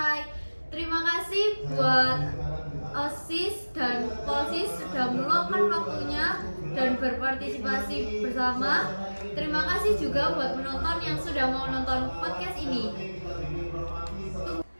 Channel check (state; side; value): inverted; both; correlation -1.00